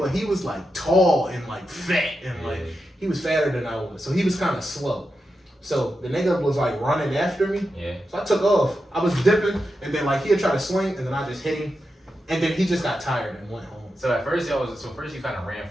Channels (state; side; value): normal; both; correlation 0.88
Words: he was like tall and like fat and like, he was fatter than I was. So he was kind of slow. So the nigga was like running after me. Yeah. So I took off. I was dipping, and then like he'd try to swing, and then I just hit him. And then he just got tired and went home. So at first you kind of ran